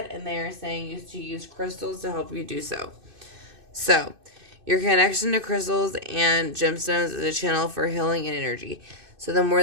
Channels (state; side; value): late; left; 2.6 ms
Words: And they are saying you to use crystals to help you do so. So, your connection to crystals and gemstones is a channel for healing and energy. So the more